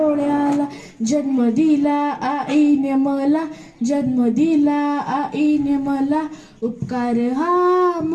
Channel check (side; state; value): both; identical; correlation 1.00